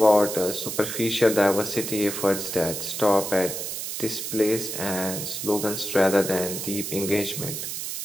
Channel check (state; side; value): noise; right; hiss, 5 dB below the sound